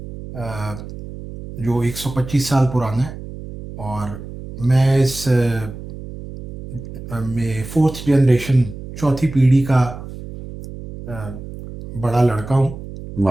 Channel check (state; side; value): noise; right; hum, 12 dB below the sound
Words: अ, जो 125 साल पुराना है। और मैं इस में फोर्थ जनरेशन, चौथी पीढ़ी का अ, बड़ा लड़का हूँ।